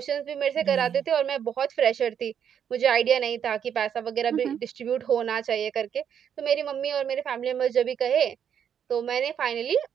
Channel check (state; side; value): quieter; left; 8.4 dB